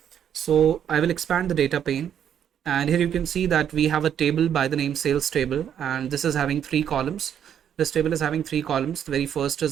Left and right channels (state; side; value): quieter; left; 9.2 dB